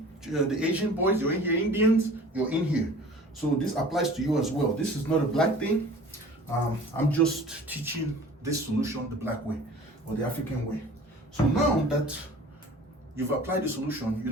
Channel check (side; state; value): both; normal; correlation 0.44